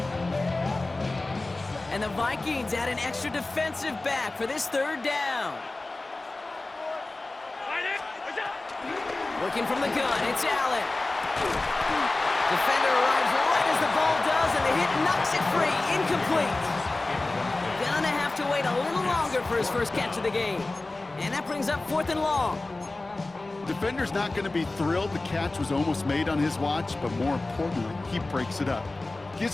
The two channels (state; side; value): quieter; right; 3.1 dB